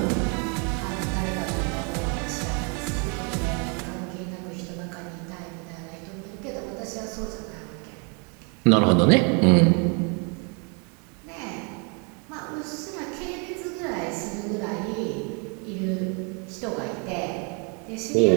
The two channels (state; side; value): quieter; left; 35.1 dB